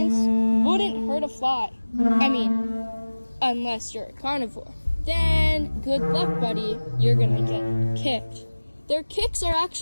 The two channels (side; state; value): both; inverted; correlation -1.00